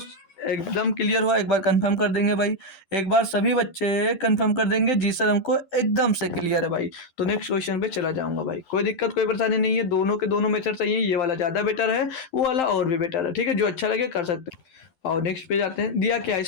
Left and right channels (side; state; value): right; late; 12 ms